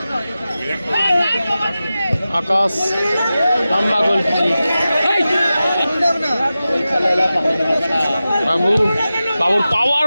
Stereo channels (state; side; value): inverted; both; correlation -0.94